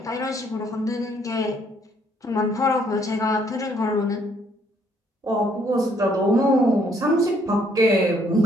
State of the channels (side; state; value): both; normal; correlation 0.67